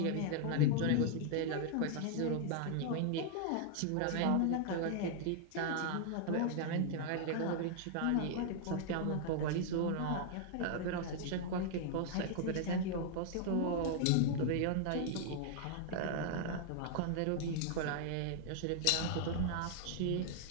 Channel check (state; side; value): different; both; correlation 0.00